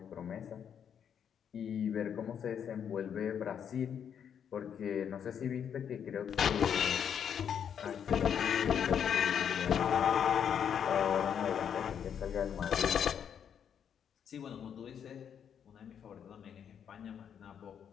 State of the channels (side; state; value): right; quieter; 8.3 dB